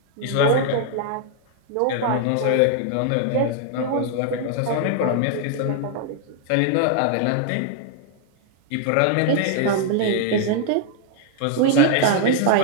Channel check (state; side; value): different; both; correlation 0.00